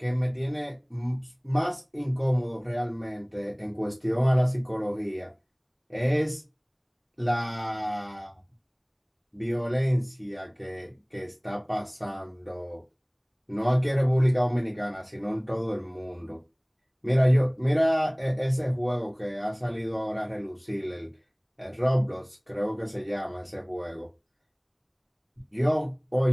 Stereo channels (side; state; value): both; identical; correlation 1.00